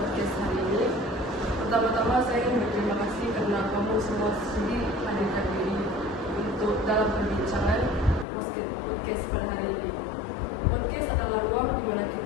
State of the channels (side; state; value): right; drops out; at 8.2 s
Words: hari ini. Pertama-tama saya ingin berterima kasih karena kamu semua sudi hadirkan diri untuk dalam perbincangan podcast pada hari ini. Podcast adalah ruang di mana